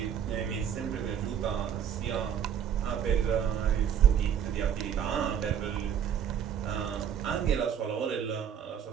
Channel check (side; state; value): left; quieter; 8.6 dB